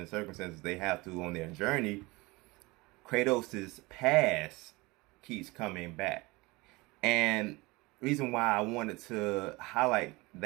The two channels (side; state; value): left; quieter; 23.4 dB